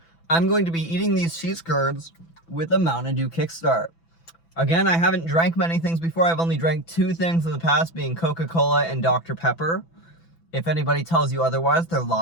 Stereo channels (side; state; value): right; late; 6.0 ms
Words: I'm going to be eating these cheese curds with a Mountain Dew Kickstart. Again, I haven't drank many things before. I've only drank two things in the past, being Coca-Cola and Dr. Pepper. If anybody tells you otherwise, they're